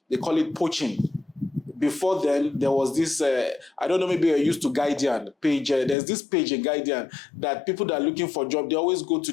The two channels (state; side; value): drops out; right; at 6.0 s